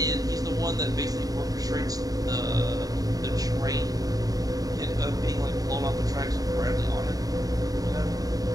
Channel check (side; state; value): left; late; 0.18 ms